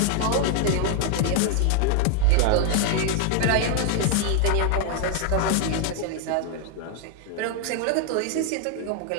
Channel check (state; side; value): different; both; correlation 0.00